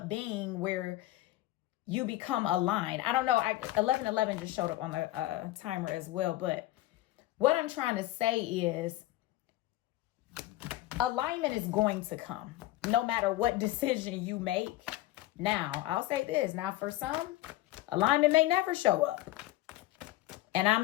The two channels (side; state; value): right; quieter; 16.1 dB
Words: being where you become aligned. I don't know. 1111 just showed up on the timer as well. But what I'm trying to say is alignment is going to come no matter what decision you make. Now, I'll say this. Now, for some, alignment may never show up. And I'm